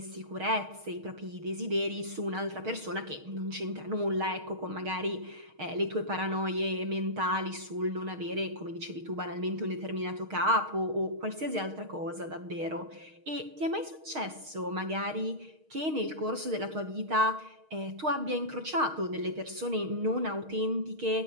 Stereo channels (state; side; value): late; left; 6.4 ms